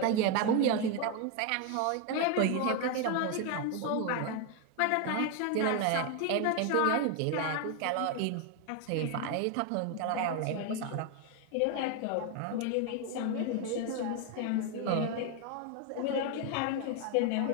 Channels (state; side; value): different; both; correlation 0.01